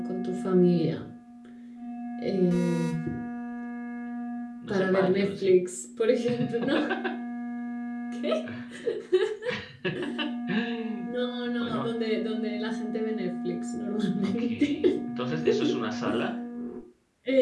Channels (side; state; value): both; identical; correlation 1.00